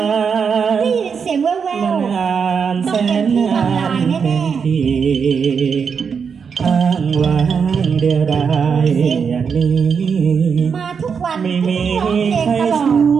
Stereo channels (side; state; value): left; quieter; 6.3 dB